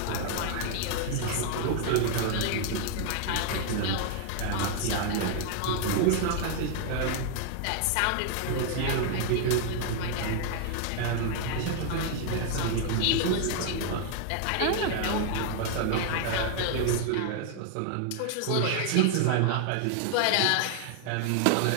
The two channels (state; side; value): different; both; correlation 0.00